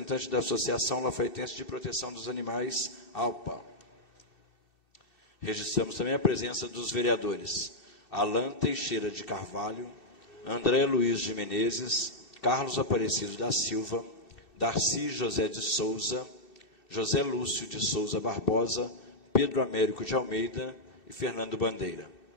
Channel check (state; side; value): late; right; 2.7 ms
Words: da Associação Lafaietense de Proteção dos Animais, ALPA. Registramos também a presença dos vereadores Alan Teixeira de Carvalho, André Luiz de Menezes, Carlos Aparecido da Silva, Darcy José de Souza, José Lúcio de Souza Barbosa, Pedro Américo de Almeida e Fernando Bandeira.